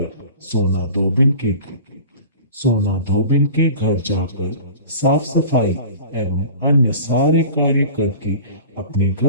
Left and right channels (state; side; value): inverted; both; correlation -0.40